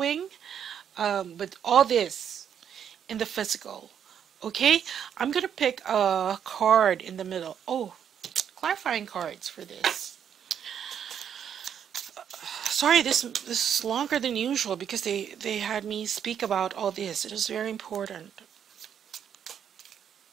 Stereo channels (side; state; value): left; quieter; 8.6 dB